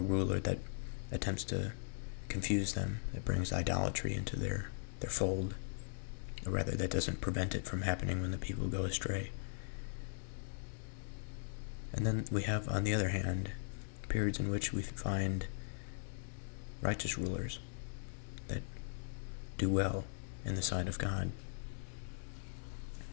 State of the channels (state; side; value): silent; right; digital silence